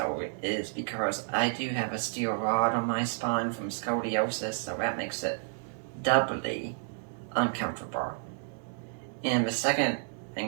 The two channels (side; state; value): left; silent; digital silence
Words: is because I do have a steel rod on my spine from scoliosis, so that makes it doubly uncomfortable. And the second